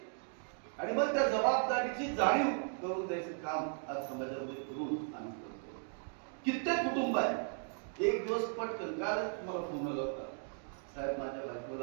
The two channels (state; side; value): silent; left; 53 dB below the other